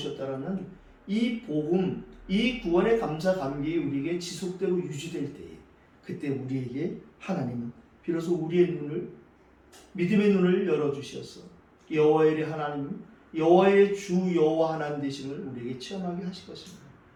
이 복음, 이 구원의 감사 감격이 우리에게 지속되고 유지될 때에, 그때 우리에게 하나님은 비로소 우리의 눈을, 믿음의 눈을 열어주셔서 여호와의 하나님, 여호와의 주 여호와 하나님 되심을 우리에게 체험하게 하실 것입니다.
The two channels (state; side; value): identical; both; correlation 1.00